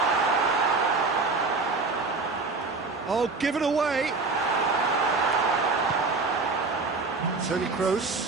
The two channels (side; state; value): left; quieter; 3.9 dB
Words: Oh, given away. Toni